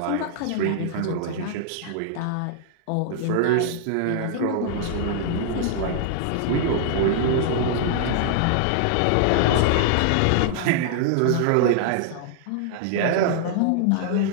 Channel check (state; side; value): different; both; correlation -0.01